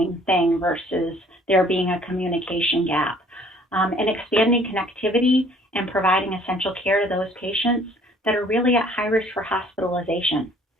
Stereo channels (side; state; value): both; normal; correlation 0.57